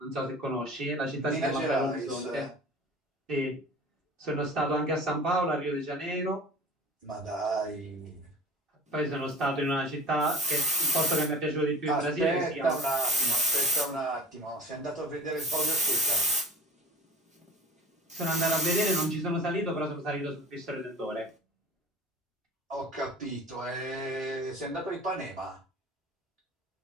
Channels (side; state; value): both; normal; correlation 0.43